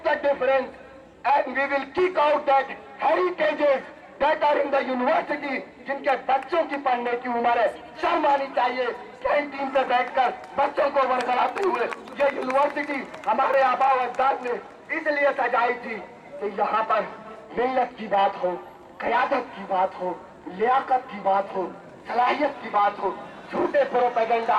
the difference, and we will kick out that heritages that are in the university. जिनके बच्चों की पढ़ने की उम्र है, शर्म आनी चाहिए कैंटीन पे बैठकर बच्चों को वरगलाते हुए। ये यूनिवर्सिटी हमारे आबा अजदाद ने इसलिए सजाई थी कि यहाँ पर मिल्लत की बात हो, क़यादत की बात हो, लियाकत की बात हो, सलाहियत की बात हो। झूठे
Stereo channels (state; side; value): identical; both; correlation 1.00